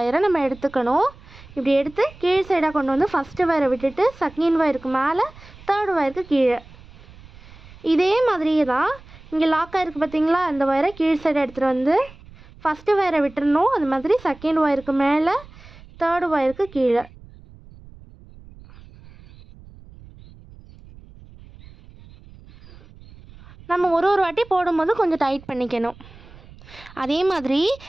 நம்ம எடுத்துக்கணும். இப்படி எடுத்து கீழ் சைடாக கொண்டு வந்து ஃபஸ்ட்டு ஒயரை விட்டுட்டு செகண்ட் ஒயருக்கு மேலே, தேர்டு ஒயருக்கு கீழே. இதே மாதிரியே தான் இங்கே லாக் ஆகிருக்கு பார்த்தீங்களா, இந்த ஒயரை கீழ் சைடை எடுத்துகிட்டு வந்து ஃபஸ்ட்டு ஒயரை விட்டுறணும். அது மாதிரி செகண்ட் ஒயருக்கு மேலே, தேர்டு ஒயருக்கு கீழே. நம்ம ஒரு வாட்டி போடும்போது கொஞ்சம் டைட் பண்ணிக்கணும். அதே மாதிரி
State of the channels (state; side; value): noise; right; rumble, 21 dB below the sound